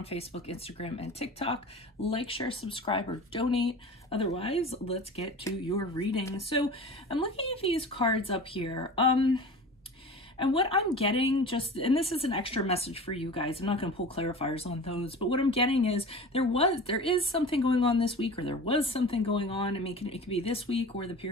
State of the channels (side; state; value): both; normal; correlation 0.36